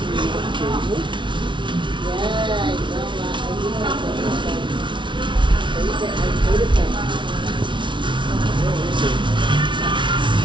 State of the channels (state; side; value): late; left; 0.24 ms